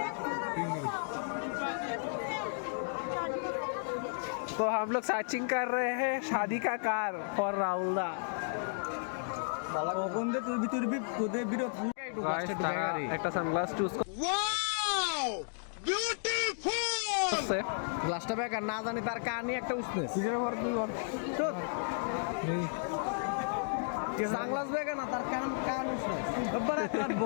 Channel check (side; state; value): right; silent; digital silence